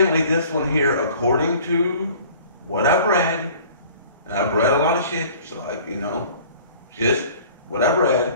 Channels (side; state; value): both; inverted; correlation -0.49